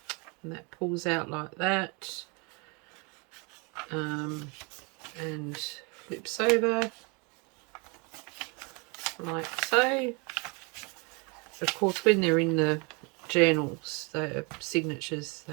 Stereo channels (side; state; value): left; quieter; 31.1 dB